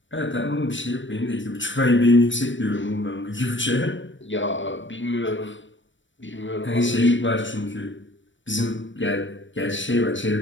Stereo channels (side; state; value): right; late; 0.55 ms